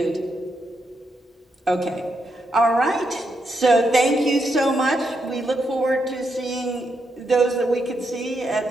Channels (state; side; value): normal; both; correlation 0.81